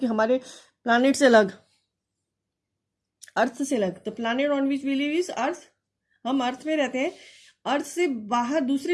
हमारे प्लानिट से अलग, अर्थ से अलग. The planet on which we live is earth. हम अर्थ में रहते हैं. अर्थ से बाहर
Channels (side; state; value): both; identical; correlation 1.00